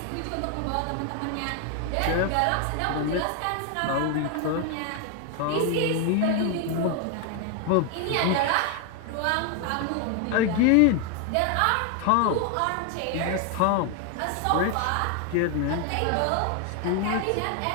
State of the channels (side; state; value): both; different; correlation 0.01